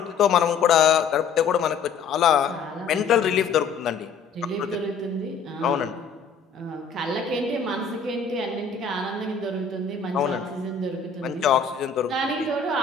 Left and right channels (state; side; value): quieter; right; 5.8 dB